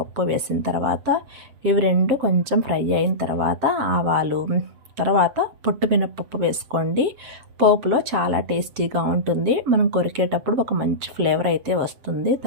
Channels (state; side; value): late; left; 7.5 ms